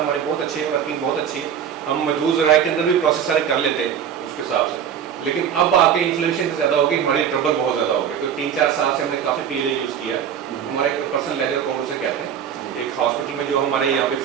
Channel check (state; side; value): quieter; left; 8.5 dB